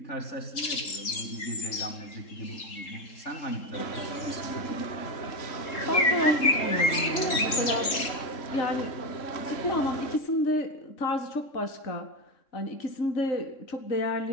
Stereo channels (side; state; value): right; late; 3.8 ms